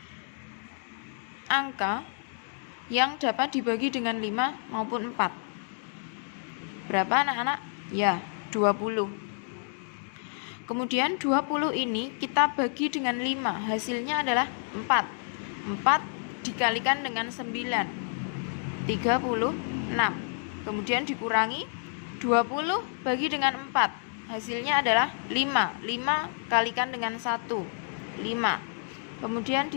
angka yang dapat dibagi dengan 5 maupun 4. Berapa anak-anak? Ya, 20. Kemudian 20 ini kita bagi dengan 5, hasilnya adalah 4. 4 dikalikan dengan 9, 36. Kemudian dikurangi 20 bagi dengan 4, hasilnya adalah 5. 5 kalikan dengan 1, 5. Kemudian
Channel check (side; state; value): right; silent; 58 dB below the other